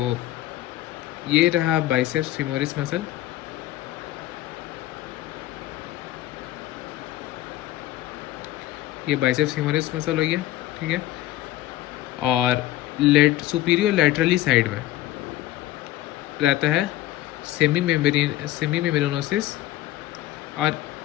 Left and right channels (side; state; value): right; quieter; 14.7 dB